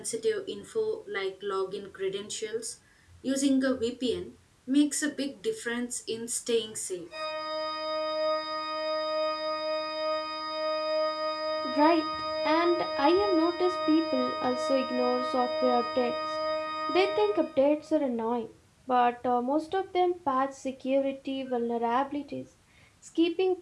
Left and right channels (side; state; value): both; identical; correlation 1.00